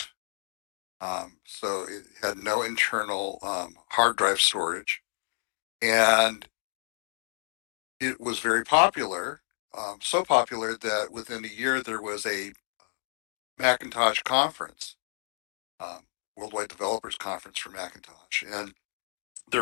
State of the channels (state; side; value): silent; right; digital silence